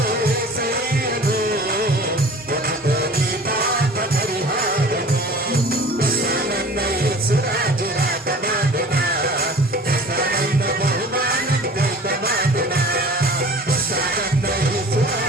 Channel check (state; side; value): normal; both; correlation 0.44